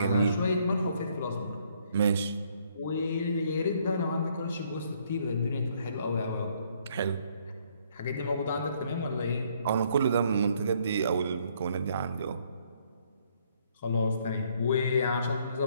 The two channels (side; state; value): both; inverted; correlation -0.67